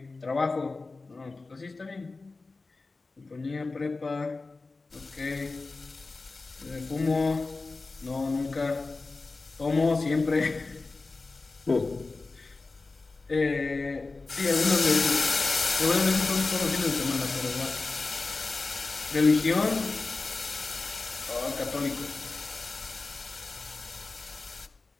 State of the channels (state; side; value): quieter; right; 3.7 dB